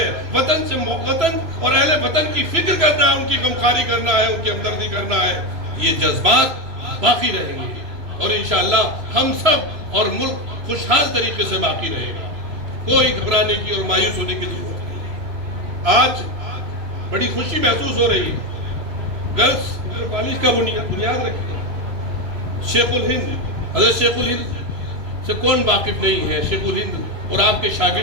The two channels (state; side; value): late; left; 3.0 ms